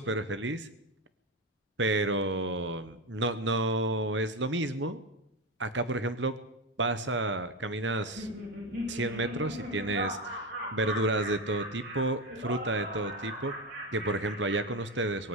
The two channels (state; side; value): normal; both; correlation 0.15